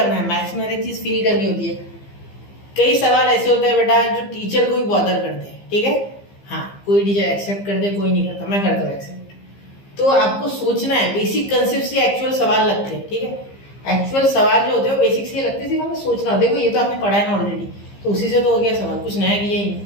है, मैथ्स में हर एक चीज फील करनी होती है। कई सवाल ऐसे होते हैं बेटा जो टीचर को भी बॉदर करते हैं, ठीक है, हाँ कोई टीचर एक्सेप्ट करते, कोई नहीं करता, मैं करता हूँ एक्सेप्ट, तो आपको सोचना है, बेसिक कंसेप्ट से एक्चुअल सवाल लगते हैं, ठीक है। एक्चुअल सवाल जो होते हैं वो बेसिक से लगते हैं, सिर्फ हमें सोचना हो। देखो ये तो आपने पढ़ा है ना ऑलरेडी, तो उसी से तो हो गया सवाल, कुछ नया किया ही नहीं,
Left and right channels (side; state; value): right; late; 15 ms